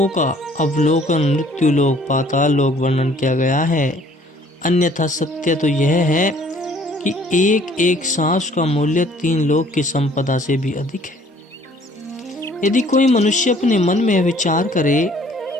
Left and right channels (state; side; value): normal; both; correlation 0.57